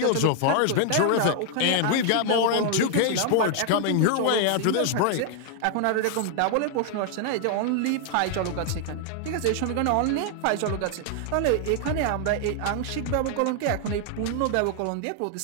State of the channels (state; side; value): different; both; correlation 0.00